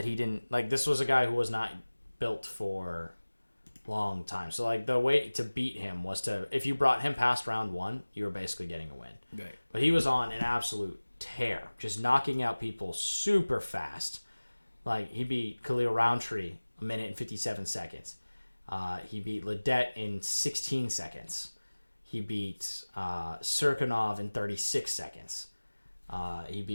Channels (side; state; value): both; inverted; correlation -1.00